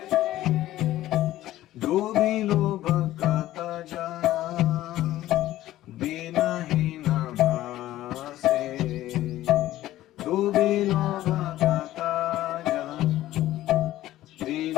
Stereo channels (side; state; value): right; quieter; 14.7 dB